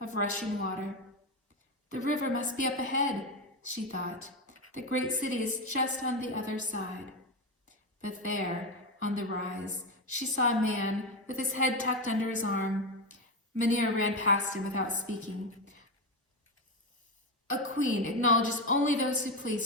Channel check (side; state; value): both; normal; correlation 0.14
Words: rushing water. "The river must be up ahead," she thought. "The great city is just on the other side." But there, on the rise, she saw a man with his head tucked under his arm. Manera ran past him without speaking. "A queen acknowledges only those who